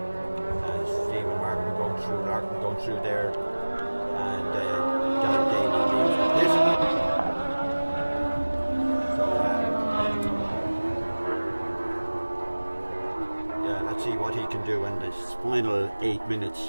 And Stephen Larkin going through there. And Darrell Daly leaves the pit. So yeah, let's see what he can do in this final 8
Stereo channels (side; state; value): both; inverted; correlation -1.00